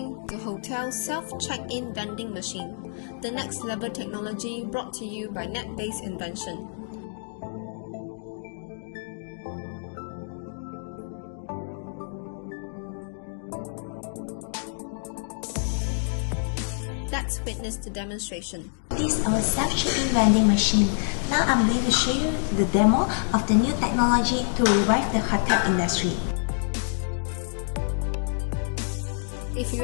the hotel self-check-in vending machine, the next level technology brought to you by Netbase Invention. Let's witness the demonstration. This is our self-check-in vending machine. Now I'm going to show you the demo of the new technology to revive the hotel industry. If you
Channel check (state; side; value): silent; right; digital silence